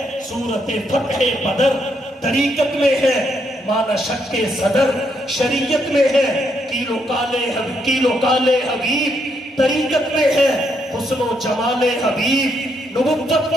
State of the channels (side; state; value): both; normal; correlation 0.76